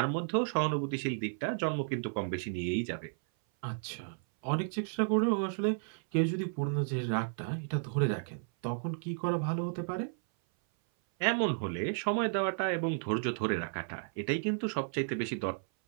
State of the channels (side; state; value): left; silent; 56 dB below the other